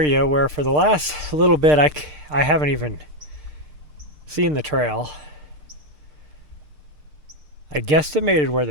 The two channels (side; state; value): left; late; 6.6 ms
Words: where for the last little bit I haven't even seen the trail. I guesstimated where